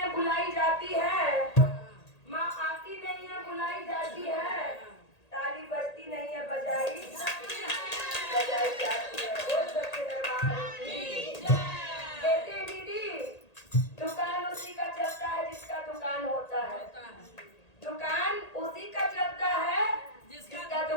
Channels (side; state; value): right; late; 1.8 ms